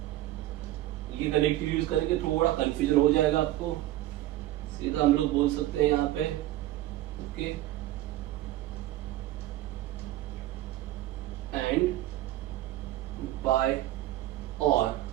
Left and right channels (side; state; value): left; quieter; 15.3 dB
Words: ये कनेक्टिव यूज करेंगे, थोड़ा कंफ्यूजन हो जाएगा आपको. सीधा हम लोग बोल सकते हैं यहाँ पे okay and bye or